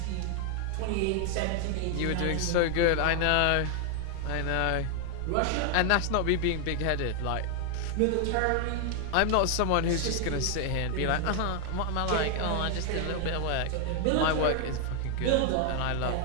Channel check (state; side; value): different; both; correlation 0.00